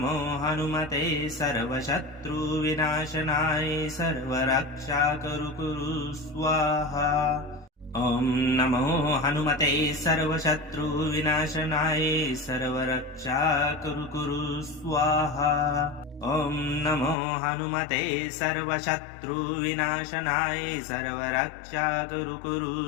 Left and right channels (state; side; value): drops out; right; at 17.2 s